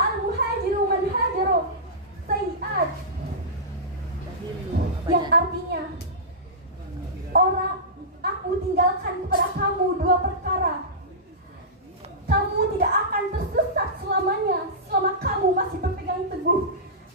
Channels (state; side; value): normal; both; correlation -0.17